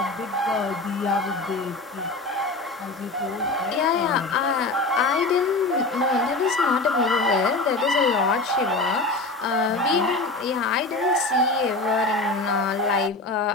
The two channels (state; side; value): quieter; right; 3.1 dB